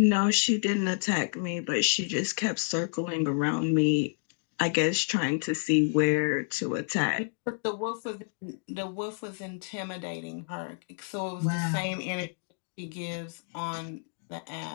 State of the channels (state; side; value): silent; right; 58 dB below the other